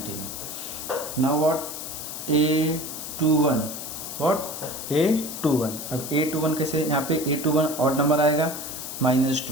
Now what, A21 what, A21। अब A21 कैसे, यहाँ पे A21 ऑड नंबर आएगा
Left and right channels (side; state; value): left; noise; hiss, 8 dB below the sound